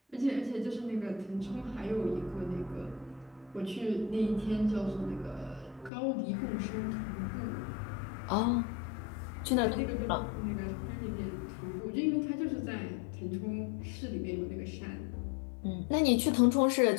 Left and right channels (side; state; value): right; drops out; at 5.9 s